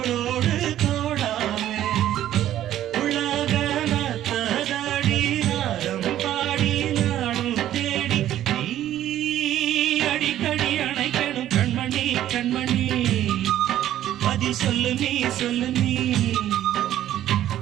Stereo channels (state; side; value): quieter; left; 12.3 dB